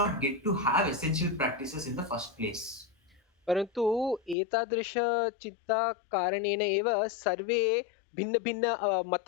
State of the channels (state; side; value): drops out; right; at 4.4 s